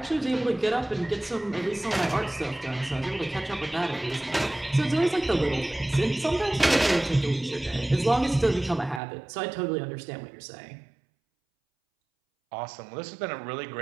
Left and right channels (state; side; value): drops out; left; at 9.0 s